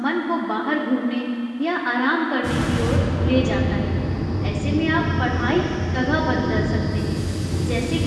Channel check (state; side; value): identical; both; correlation 1.00